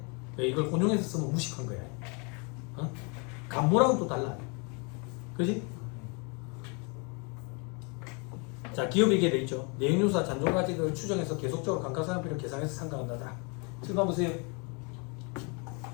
이걸 혼용해서 쓰면 무식한 거야. 어? 감모랑은 또 달라. 그지? 자, 기업이익에 돼 있죠. 내용요소와 잔존가액을 추정해서 계속적으로 감가상각비를 계산해서 상각한다. 7번 보세요.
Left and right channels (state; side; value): quieter; right; 33.7 dB